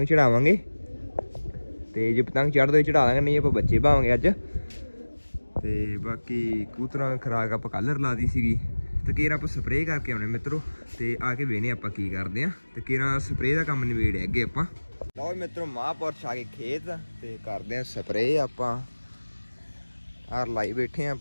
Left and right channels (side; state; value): both; inverted; correlation -1.00